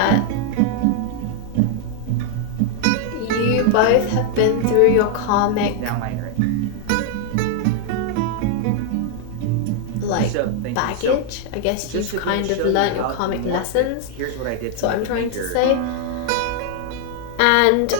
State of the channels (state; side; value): different; both; correlation 0.00